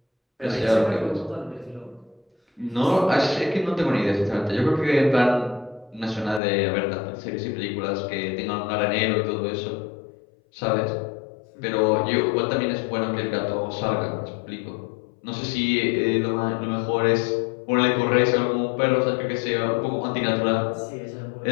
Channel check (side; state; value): right; drops out; at 6.4 s